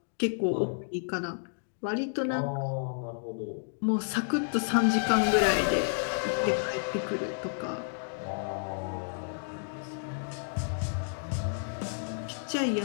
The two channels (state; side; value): silent; right; digital silence